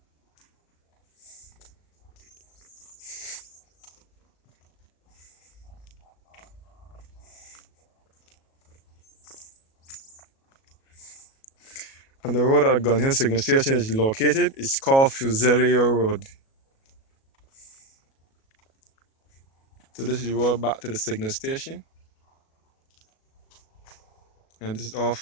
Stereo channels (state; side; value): late; right; 37 ms